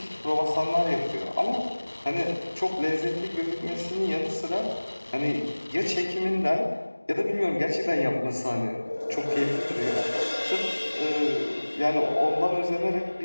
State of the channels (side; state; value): both; inverted; correlation -1.00